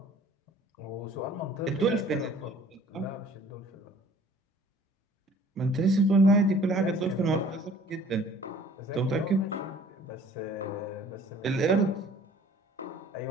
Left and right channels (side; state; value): both; normal; correlation 0.52